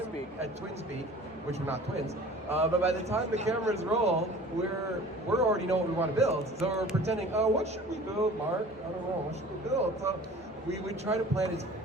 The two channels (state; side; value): normal; both; correlation 0.44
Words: at twin speed, which we're not twins, but by the time the cameras roll, we're already know what we want to build. So we're pretending, oh, what should we build, Mark? I don't know, what should we build? So we try to plan as